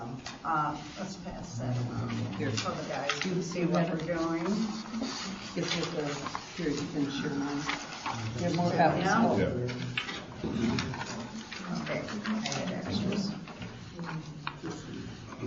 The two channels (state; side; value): identical; both; correlation 1.00